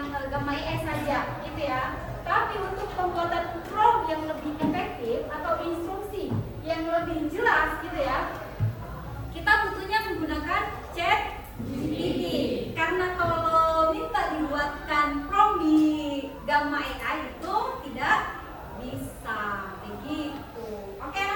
Gamma AI saja, gitu ya. Tapi untuk pembuatan prompt yang lebih efektif atau instruksi yang lebih jelas, gitu ya, kita butuhnya menggunakan ChatGPT. Karena kalau minta dibuatkan prompt di Gamma AI itu tidak bisa begitu. Oke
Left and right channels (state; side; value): identical; both; correlation 1.00